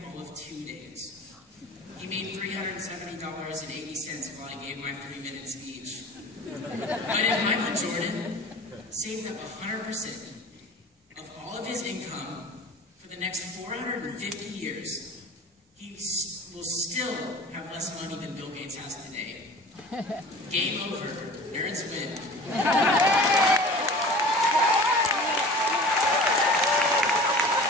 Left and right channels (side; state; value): both; normal; correlation 0.41